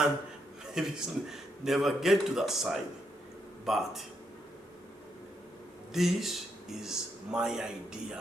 maybe never get to that side. But this is my idea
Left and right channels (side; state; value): both; normal; correlation 0.79